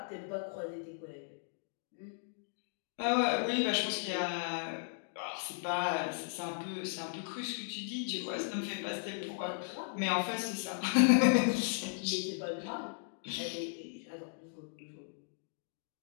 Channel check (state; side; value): silent; right; digital silence